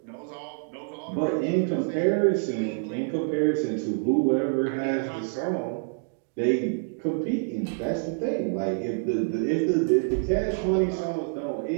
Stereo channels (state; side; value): silent; left; digital silence